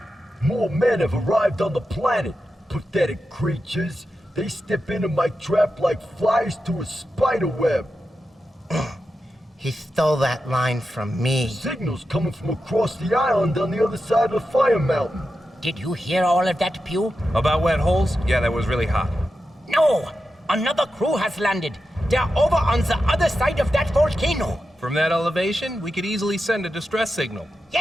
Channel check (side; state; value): both; normal; correlation 0.90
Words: More men have arrived on the planet. Pathetic creatures. They step into my trap like flies to a spider web. He stole that line from me. Signals coming from across the island on the other side of the fire mountain. Did you hear all of that, Pew? About wet holes? Yeah, that was really hot. No! Another crew has landed. They're over on the other side of that volcano. From that elevation, we could easily send a distress signal.